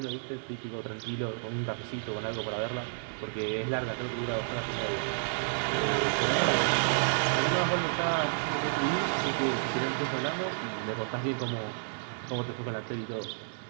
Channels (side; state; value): left; silent; digital silence